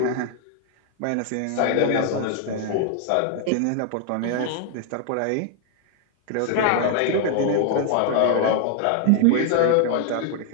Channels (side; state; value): both; different; correlation 0.00